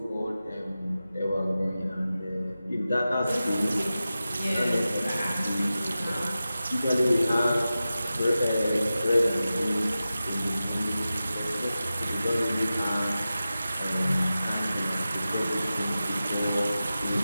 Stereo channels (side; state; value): both; inverted; correlation -0.94